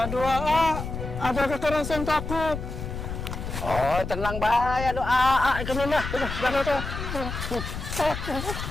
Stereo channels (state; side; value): noise; left; rumble, 6 dB below the sound